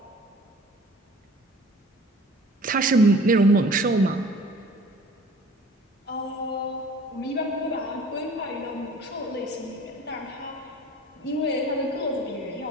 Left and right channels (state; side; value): normal; both; correlation 0.47